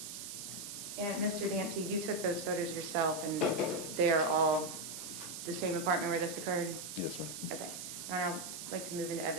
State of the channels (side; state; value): right; noise; hiss, 8 dB below the sound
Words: And Mr. Dancy, you took those photos yourself, and they are all the same apartment where this occurred? Yes, ma'am. Okay. Now I'd like to move into